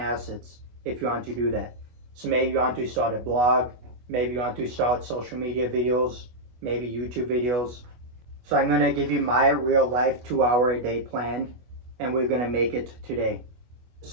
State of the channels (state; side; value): late; left; 25 ms